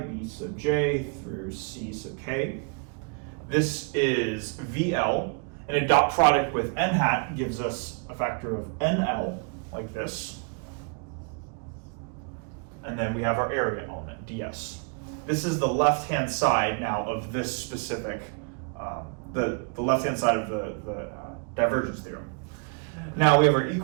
sub j through c sub k. This is vl, and a dot product with n hat gives us a factor of nl, like this. And then we have our area element, ds. This is the left-hand side now of this specific, the left-hand side of the divergence theorem. Now we have our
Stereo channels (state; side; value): quieter; left; 37.7 dB